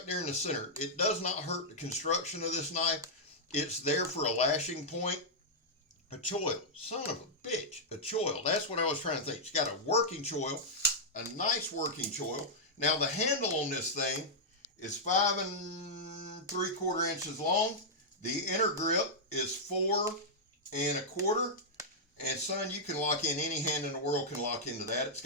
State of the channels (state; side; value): normal; both; correlation -0.07